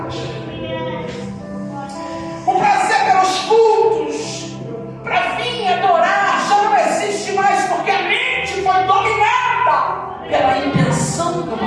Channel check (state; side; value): identical; both; correlation 1.00